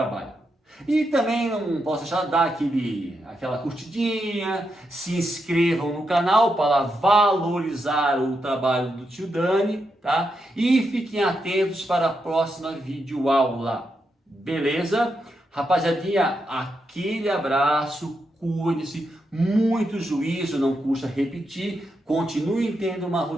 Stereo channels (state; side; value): normal; both; correlation 0.84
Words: E também não posso deixar de dar aquela curtidinha, se inscrevam no canal para valorizar o trabalho do tio Dani, tá? E fiquem atentos para a próxima videoaula, beleza? Rapaziadinha, aquele abraço, cuide-se, muito juízo, não custa repetir, continuem tendo uma